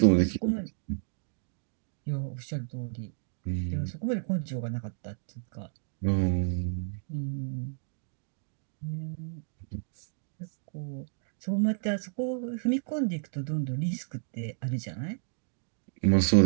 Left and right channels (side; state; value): left; silent; digital silence